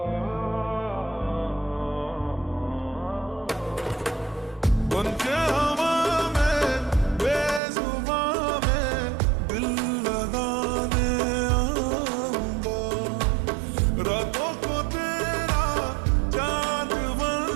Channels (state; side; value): drops out; left; at 7.6 s